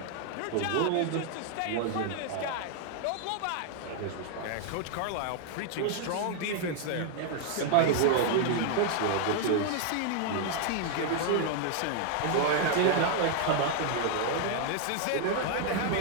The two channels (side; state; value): both; different; correlation 0.00